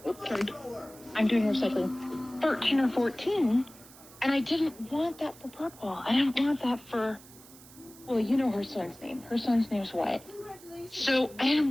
I'm doing recycling, 13 or 14. And I didn't want that for Purple. I didn't want that for, well, her son's name. Her son's name's Wyatt. So I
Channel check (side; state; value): right; noise; hiss, 21 dB below the sound